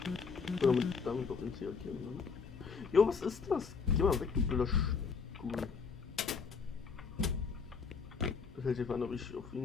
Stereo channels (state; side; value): quieter; right; 5.4 dB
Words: Oder damit auf den C markieren, ne? Jo, was ist das? Geh mal weg, du blöder Stuhl. Das hält sich an, ob ich auf